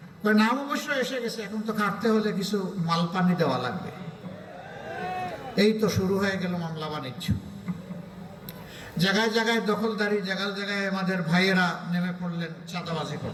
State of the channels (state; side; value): identical; both; correlation 1.00